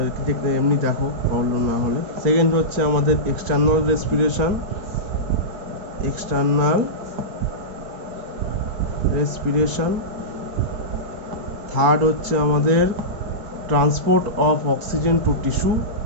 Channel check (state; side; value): late; left; 4.3 ms